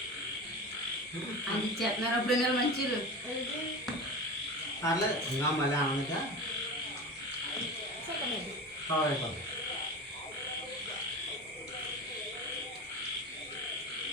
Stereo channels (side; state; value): both; normal; correlation 0.29